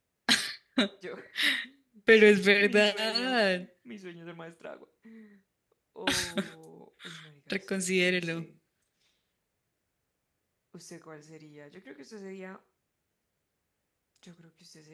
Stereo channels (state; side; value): identical; both; correlation 1.00